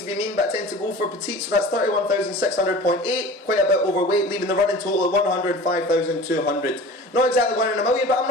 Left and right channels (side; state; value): both; normal; correlation 0.39